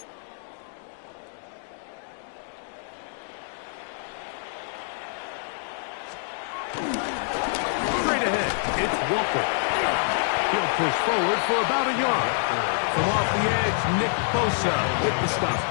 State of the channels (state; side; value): silent; right; digital silence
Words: Straight ahead, it's Walker. He'll push forward for about a yard. From off the edge, Nick Bosa with the stop.